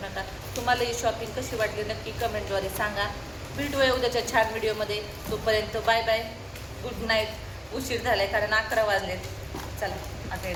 नका तुम्हाला ही शॉपिंग कशी वाटली नक्की कमेंटद्वारे सांगा भेटूया उद्याच्या छान व्हिडिओमध्ये तोपर्यंत बाय बाय गुड नाईट उशीर झालाय कारण 11 वाजलेत चला आता हे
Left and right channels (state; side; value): identical; both; correlation 1.00